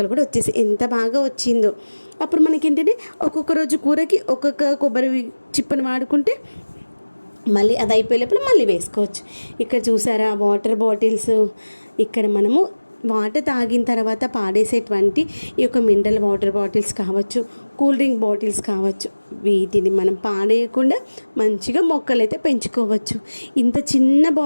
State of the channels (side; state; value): both; inverted; correlation -1.00